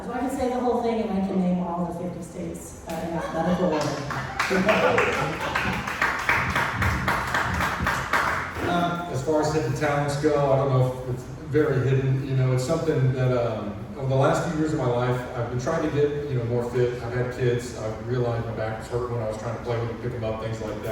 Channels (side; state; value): both; identical; correlation 1.00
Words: So I can say the whole thing, and I can name all the 50 states in alphabetical order. As far as hidden talents go, I don't know if it's very hidden. You know, it's something that over the last few years of my life, I've been trying to get more fit. I've had kids. I've realized my back was hurting when I was trying to play with them, pick them up, things like